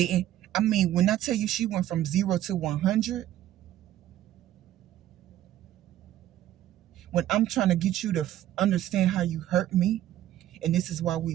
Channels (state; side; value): quieter; left; 12.8 dB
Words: I mean, when I tell you she went from 0 to 100, when I'm trying to get you to understand how you hurt me, and this is why